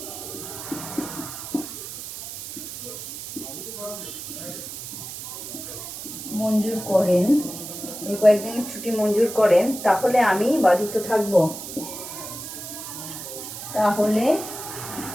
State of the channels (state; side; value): noise; right; hiss, 9 dB below the sound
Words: মঞ্জুর করেন, তাহলে আমি বাধিত থাকব।